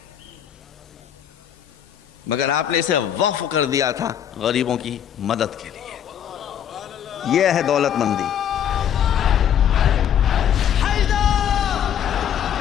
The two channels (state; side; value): quieter; right; 9.5 dB